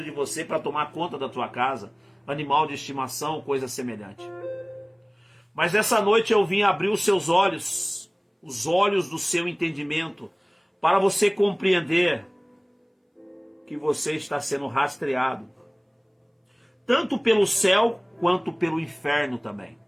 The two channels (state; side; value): identical; both; correlation 1.00